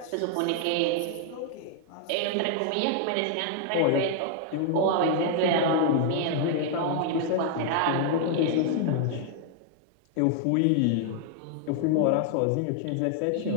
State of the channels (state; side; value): different; both; correlation 0.00